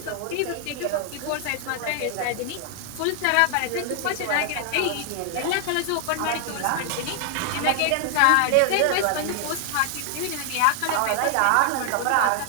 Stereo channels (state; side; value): different; both; correlation 0.00